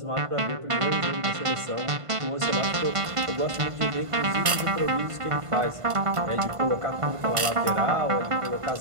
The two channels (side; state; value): left; late; 1.5 ms